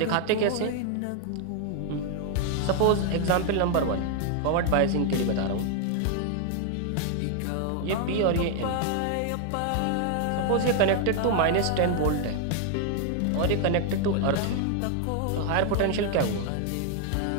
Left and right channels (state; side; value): different; both; correlation 0.00